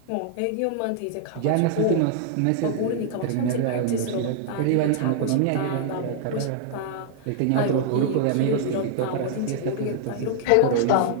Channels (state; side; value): different; both; correlation -0.01